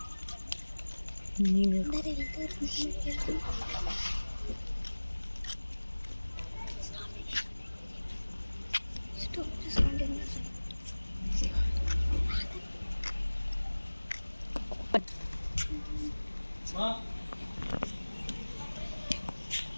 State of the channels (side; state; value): both; inverted; correlation -1.00